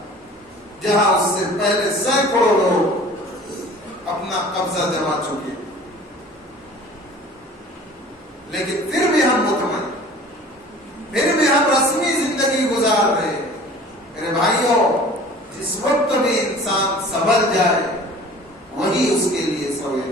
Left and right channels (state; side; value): normal; both; correlation 0.45